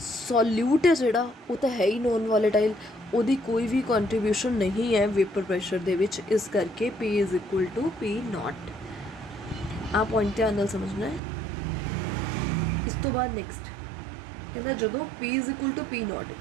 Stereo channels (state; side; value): drops out; left; at 11.2 s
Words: है जिहड़ा वो तो है ही नॉन वॉलेटाइल, उहदी कोई भी कॉन्ट्रीब्यूशन नहीं है वेपर प्रेशर दे विच, इस करके P is equal to P not. आ पॉइंट ध्यान नाल समझना है। इस तो बाद नैक्सट कहना जदों P is equal to P not,